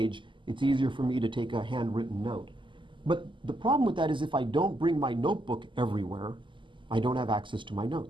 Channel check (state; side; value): late; left; 0.24 ms